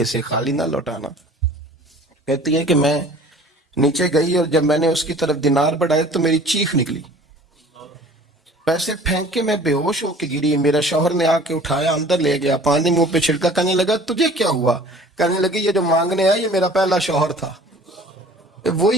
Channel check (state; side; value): normal; both; correlation 0.48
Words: خالی نہ لوٹانا. کہتی ہے کہ میں نیچے گئی اور جب میں نے اس کی طرف دینار بڑھائے تو میری چیخ نکلی، پیسے پھینک کے میں بے ہوش ہو کے گری. میرا شوہر نے آ کے اٹھایا، اندر لے گیا، پانی منہ پہ چھڑکا. کہنے لگا تجھے کیا ہوا؟ کہنے لگی یہ جو مانگنے آیا یہ میرا پہلا شوہر تھا،